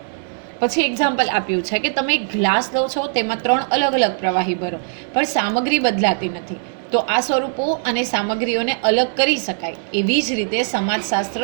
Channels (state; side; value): silent; left; 66 dB below the other